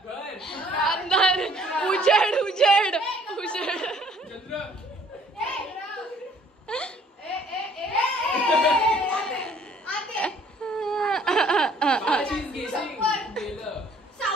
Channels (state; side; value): normal; both; correlation 0.59